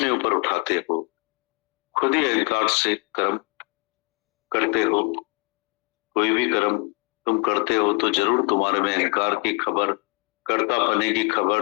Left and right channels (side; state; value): right; quieter; 30.7 dB